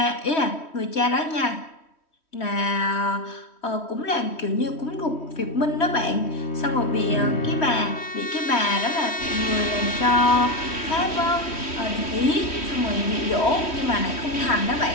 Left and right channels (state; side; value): late; right; 3.1 ms